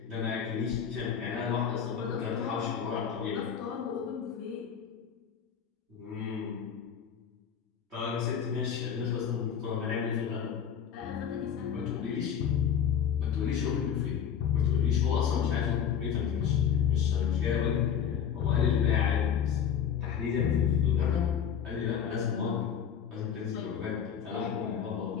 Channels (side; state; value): right; quieter; 8.1 dB